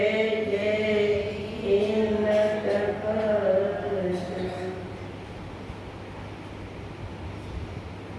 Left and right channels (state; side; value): identical; both; correlation 1.00